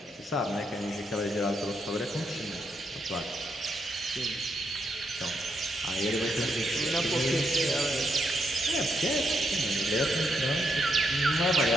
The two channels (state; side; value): normal; both; correlation 0.79